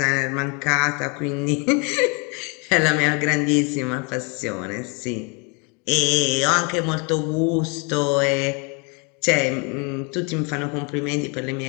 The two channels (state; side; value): quieter; right; 32.7 dB